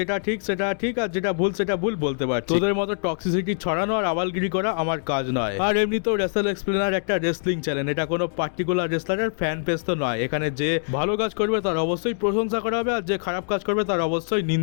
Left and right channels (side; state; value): right; silent; digital silence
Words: ঠিক সেটা ঠিক আর যেটা ভুল সেটা ভুল বলতে পারছি। তোদের মতো টক্সিসিটি ছড়ানো আর আবালগিরি করা আমার কাজ নয়। আর এমনি তো রেসেল এক্সপ্লেনার একটা রেসলিং চ্যানেল, এটা কোনো পার্টিকুলার রেসলারের ফ্যান পেজ তো নয়। এখানে যে ভালো কাজ করবে তার অবশ্যই প্রশংসা করা হবে, আর যে খারাপ কাজ করবে তার অবশ্যই